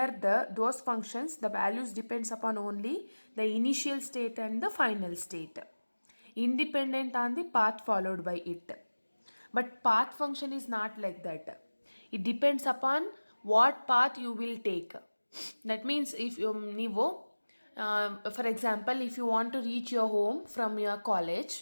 those functions, the values depends upon only the initial state and the final state, independent on the path followed by it. But path function is not like that. It depends upon what path you will take. That means if ನೀವು for example, if you want to reach your home from your college,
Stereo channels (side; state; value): both; inverted; correlation -1.00